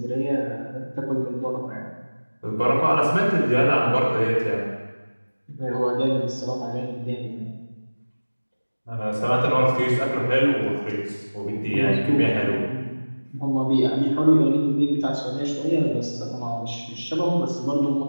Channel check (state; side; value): inverted; both; correlation -1.00